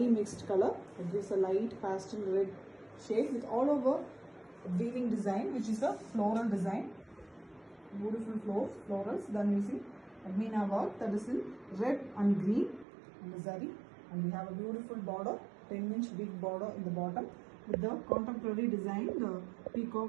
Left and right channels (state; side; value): drops out; left; at 12.9 s